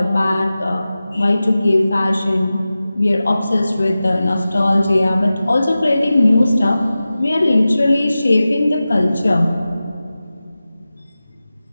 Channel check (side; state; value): both; inverted; correlation -0.95